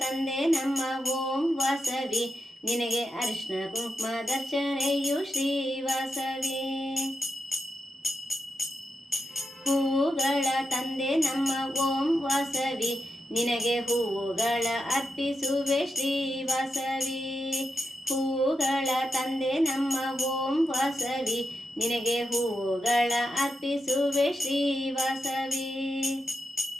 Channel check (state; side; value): normal; both; correlation 0.87